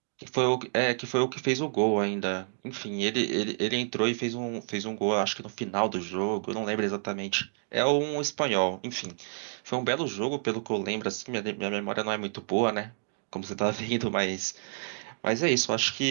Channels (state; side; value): silent; left; digital silence